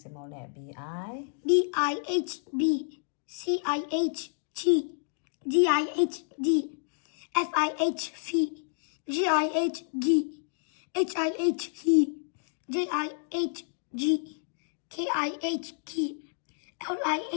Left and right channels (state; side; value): silent; right; digital silence